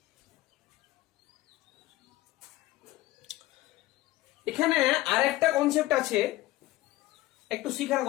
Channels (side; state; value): right; quieter; 16.8 dB